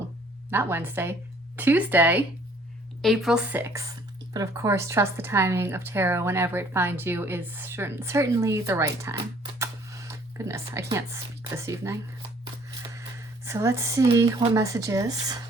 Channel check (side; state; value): both; normal; correlation 0.58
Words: Tuesday, April 6th. But of course, trust the timing of tarot whenever it finds you is certainly the right time. Goodness, I can't speak this evening. So let's see what messages